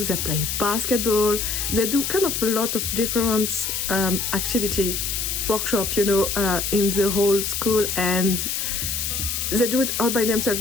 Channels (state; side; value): noise; left; hiss, 2 dB below the sound